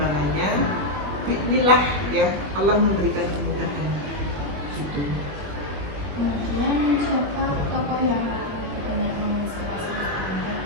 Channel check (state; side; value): late; left; 21 ms